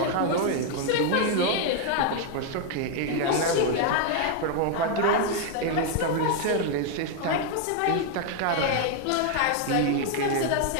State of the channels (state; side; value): different; both; correlation 0.00